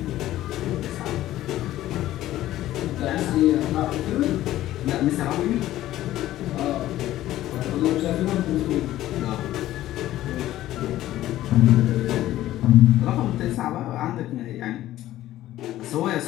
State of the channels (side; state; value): right; quieter; 14.3 dB